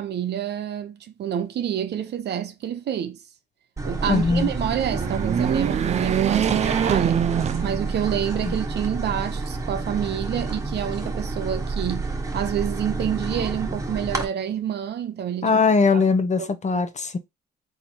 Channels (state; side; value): quieter; left; 3.0 dB